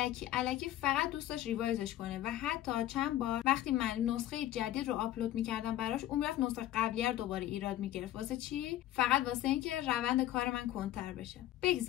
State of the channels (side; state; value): right; quieter; 13.7 dB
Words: الکی فقط دوست داشت ریوایزش کنه و حتی چند بار وقتی من نسخه جدید رو آپلود میکردم براش، اون میرفت نسخه قبلی رو دوباره ایراد میگرفت. واسه چی؟ فقط واسه اینکه روند کار من کنتر بشه.